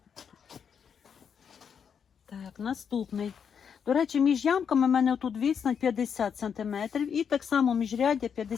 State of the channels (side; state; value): right; quieter; 7.2 dB